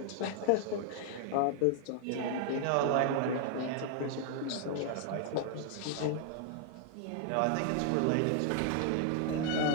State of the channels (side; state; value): both; different; correlation 0.00